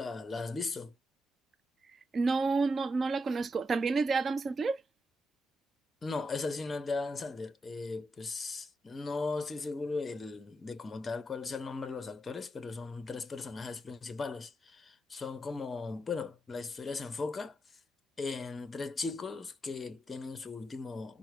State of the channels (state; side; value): normal; both; correlation 0.85